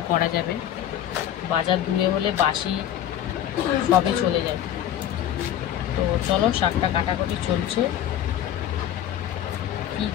করা যাবে, বাজার দূরে হলে বাসি সবই চলে যায়। তো চলো শাকটা কাটাকাটি চলছে, কি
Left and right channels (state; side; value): quieter; right; 11.0 dB